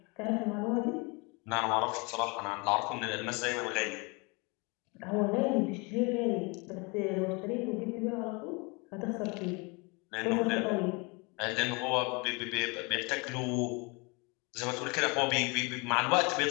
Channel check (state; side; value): quieter; right; 29.3 dB